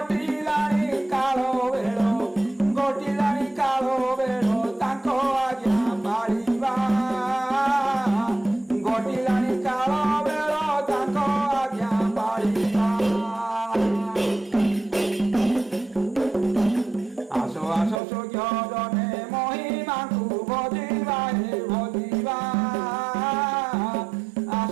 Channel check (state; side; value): drops out; left; at 18.0 s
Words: কাল বেড় ঘটিলানি কাল বেড় তাଙ୍କ আজ্ঞା পাଳିବା ঘটিলানি কাল বেড় তাଙ୍କ আজ্ঞା পাଳିବା আস আস সূর্যদনে মহিমাকু ভজিবা হে ভজিবা